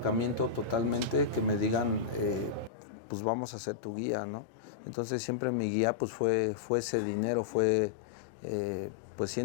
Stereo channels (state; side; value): drops out; right; at 2.7 s